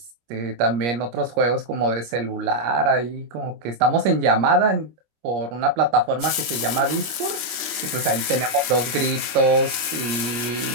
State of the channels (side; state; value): left; late; 25 ms